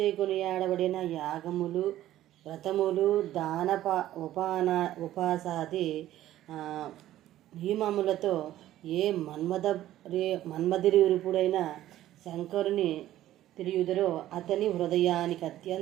కొనియాడబడిన యాగములు, వ్రతములు, ఉపాసాది నియమములతో ఏ మన్మధురుపుడైన శంకరుని తిరియుదరో అతని హృదయానికి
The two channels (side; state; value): left; quieter; 13.6 dB